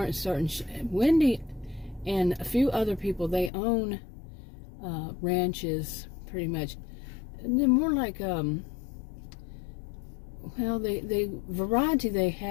certain. Wendy and a few other people, they own ranches pretty much, and they're more like well, the variety they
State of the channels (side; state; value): right; drops out; at 3.5 s